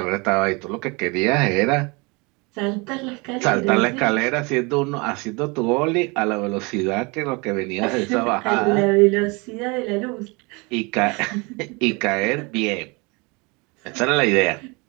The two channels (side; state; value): left; quieter; 28.0 dB